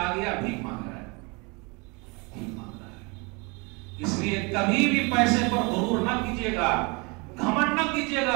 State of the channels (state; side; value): quieter; left; 29.3 dB